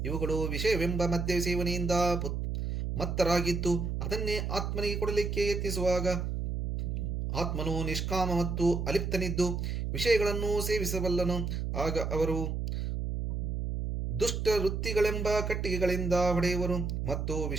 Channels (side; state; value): right; noise; hum, 2 dB below the sound